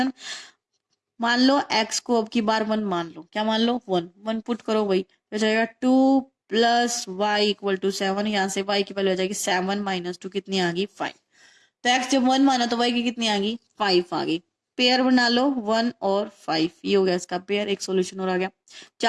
मान लो x को अब की बार 1 मान लो, क्या मान लो, 1 1 पुट करो भाई, हो जाएगा 2 प्लस वाई इक्वल टू 7। यहाँ से y की वैल्यू हो जाएगी 7 माइनस 2 कितनी आ गई, 5। तो x जब 1 माना तो y की कितनी आ गई, 5 आ गई। पेयर बना लो 1 और 5, ये हो गया इसका पेयर। एक सॉल्यूशन और आ गया।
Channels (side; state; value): both; identical; correlation 1.00